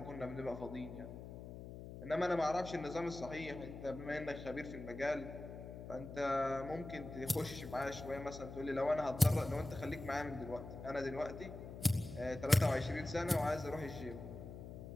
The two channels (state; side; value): noise; left; hum, 11 dB below the sound